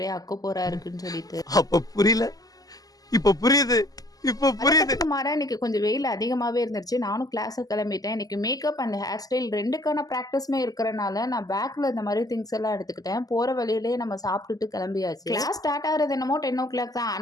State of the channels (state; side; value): late; right; 0.17 ms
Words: அக்கப்போரா இருக்குன்னு சொல்லிட்டு. அப்ப புரியல, இப்ப புரியுது. இப்ப புரியுது. அதுக்கு மாறா இன்னைக்கு கொஞ்சம் வெயில் அதிகமாவே இருந்துச்சு. நானும் கிளாஸுக்கு கிளம்பிட்டேன். இன்னைக்கு மேக்கப் அண்ட் ஹேர் ஸ்டைல் 2க்கான பிராக்டிஸுமே இருக்கிறனால நான் பேக்ல இந்த மாதிரி திங்ஸ் எல்லாம் எடுத்துக்கிட்டேன். போற வழியிலேயே நம்ம சாப்பிட்டுட்டு கிளம்பியாச்சு. கிளாஸ் ஸ்டார்ட் ஆகிறது என்னமோ 10 o'clock தான்.